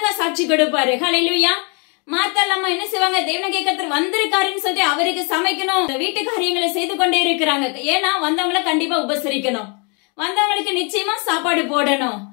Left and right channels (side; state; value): right; quieter; 34.8 dB